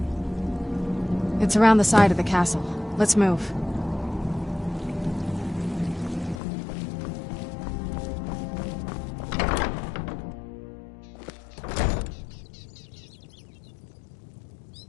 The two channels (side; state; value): right; drops out; at 6.4 s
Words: It's around the side of the castle. Let's move.